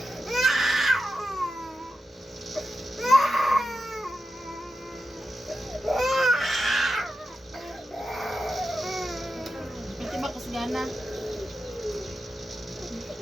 Ito ba kasgana?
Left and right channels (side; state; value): both; normal; correlation 0.90